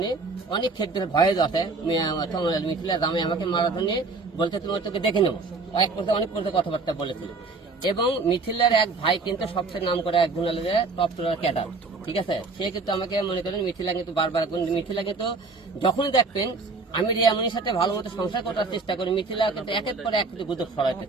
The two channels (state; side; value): quieter; left; 3.9 dB